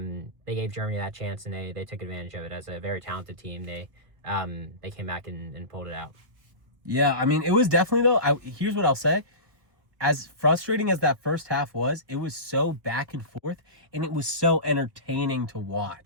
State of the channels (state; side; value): late; left; 1.4 ms